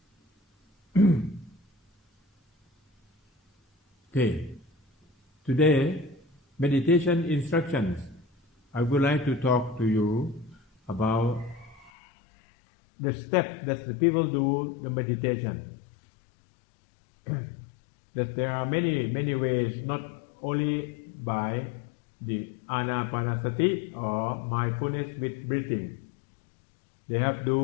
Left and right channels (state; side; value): drops out; right; at 11.9 s